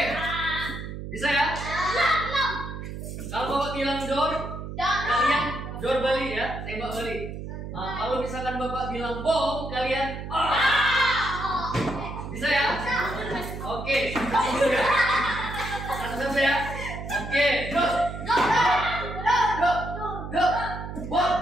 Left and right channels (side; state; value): right; noise; hum, 8 dB below the sound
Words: Bisa ya? Kalau Bapak bilang door, kalian door balik ya, tembak balik. Kalau misalkan Bapak bilang bom, kalian bisa ya? Oke, satu ya. Satu ya. Oke, door. Door. Bom.